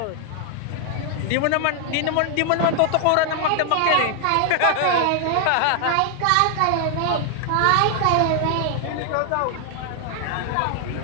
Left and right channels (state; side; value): different; both; correlation 0.00